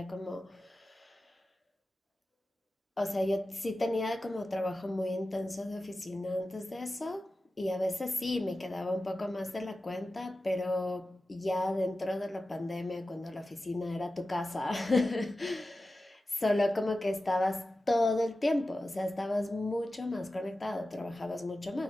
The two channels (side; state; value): both; normal; correlation 0.94